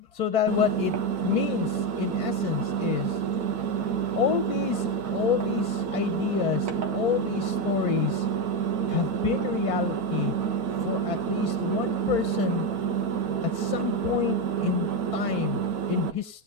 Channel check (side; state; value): left; late; 4.4 ms